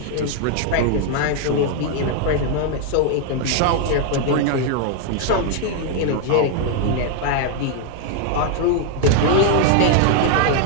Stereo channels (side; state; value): both; different; correlation 0.00